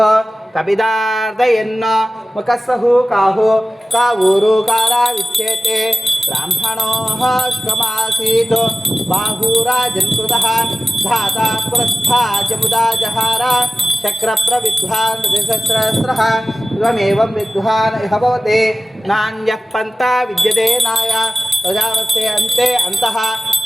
कपिदार्दयन्न मुखस्सहु काहो कावूरुकारा विच्येते ब्राह्मणोः श्कमासीत् बाहुराजन्कृतः धाता पुरस्था जमुदा जहार चक्रप्रविद्वान् द्विसहस्रः इवमेवं विद्वान् इह भवते नान्यः पन्था विद्यते नाय प्रजावस्य अन्ते अन्तः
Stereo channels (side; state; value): both; normal; correlation 0.96